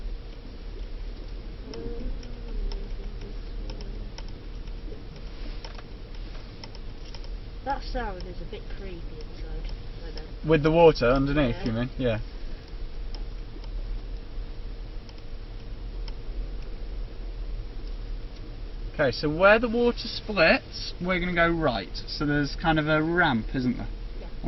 That sound is a bit creepy inside. I know. With the water underneath, Yeah. you mean? Yeah. Okay, so where the water splits, we're going to go right. So there's kind of a ramp, isn't there? Yeah.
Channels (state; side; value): identical; both; correlation 1.00